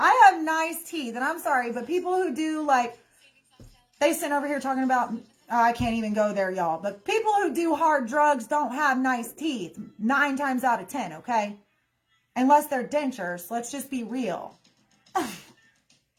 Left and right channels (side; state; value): both; identical; correlation 1.00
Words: have nice teeth, and I'm sorry, but people who do they sit over here talking about, I can't even go there, y'all. But people who do hard drugs don't have nice teeth 9 times out of 10, okay? Unless they're dentures. Let's just be real.